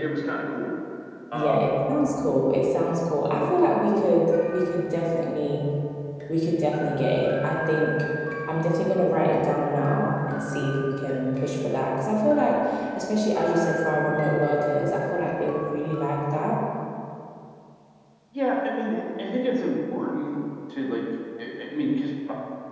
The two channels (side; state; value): both; identical; correlation 1.00